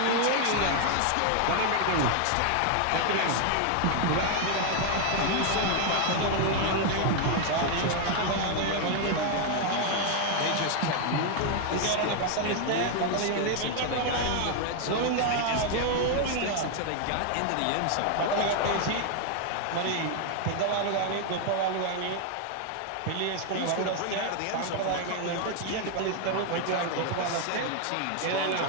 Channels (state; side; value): different; both; correlation 0.00